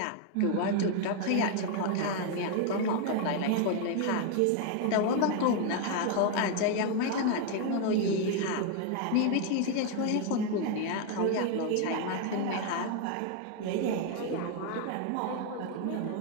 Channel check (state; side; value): different; both; correlation 0.01